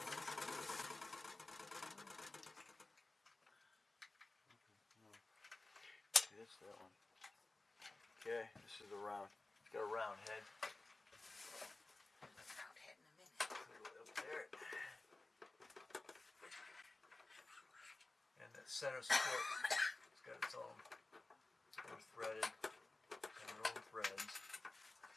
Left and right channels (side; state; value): right; quieter; 3.0 dB